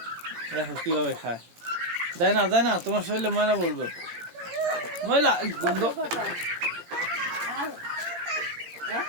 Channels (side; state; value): left; late; 18 ms